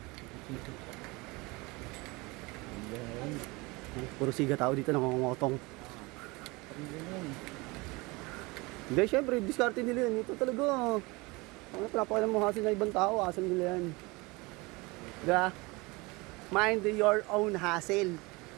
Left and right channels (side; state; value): left; quieter; 24.6 dB